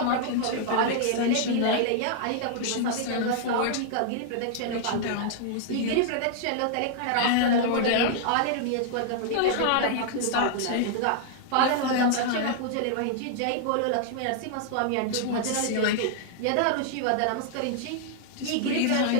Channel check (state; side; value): different; both; correlation -0.01